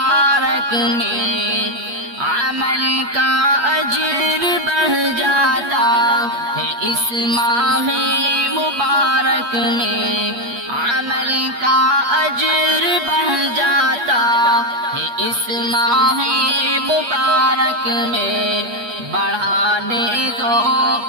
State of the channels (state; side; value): late; left; 8.3 ms